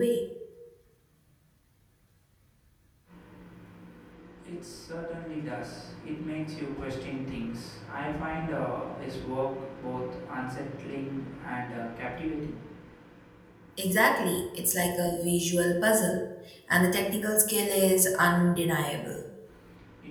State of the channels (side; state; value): both; identical; correlation 1.00